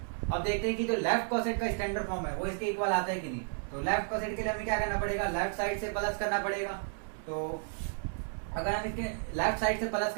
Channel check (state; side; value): silent; left; 56 dB below the other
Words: अब देखते हैं कि जो लेफ्ट कॉसेट का स्टैंडर्ड फॉर्म है वो इसके इक्वल आता है कि नहीं। तो लेफ्ट कॉसेट के लिए हमें क्या करना पड़ेगा, लेफ्ट साइड से प्लस करना पड़ेगा। तो अगर हम इसके लेफ्ट साइड से प्लस